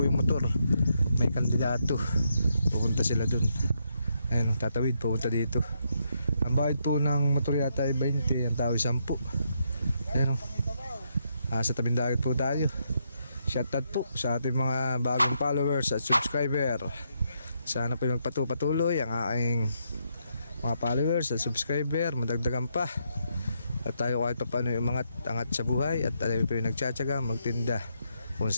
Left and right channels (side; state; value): both; inverted; correlation -0.78